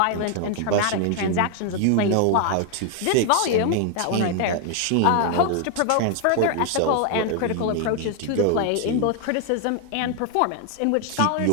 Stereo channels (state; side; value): different; both; correlation 0.00